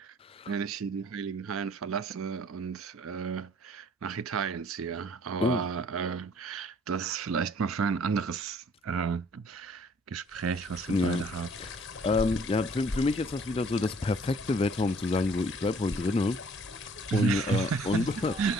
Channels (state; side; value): normal; both; correlation 0.58